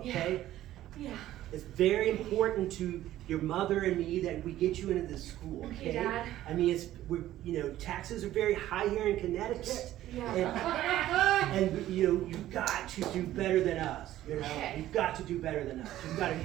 okay? Yeah. It's very important to your mother and me that we get you into this school, okay? Okay, Dad. I mean, taxes are very high here in Connecticut. Yeah. And you've got to do better than us, Okay. You've got to do better than us. You've got to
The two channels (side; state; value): left; quieter; 13.8 dB